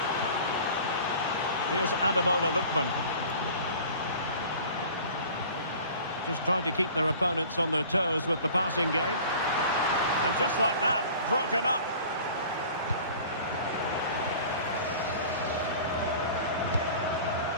Here's Ademola Lookman. Just trying to keep their opponents on their toes with the passing game. And just like that, broken up.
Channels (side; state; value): both; inverted; correlation -0.44